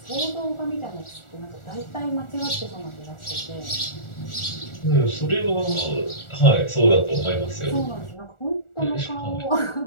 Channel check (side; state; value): right; late; 1.4 ms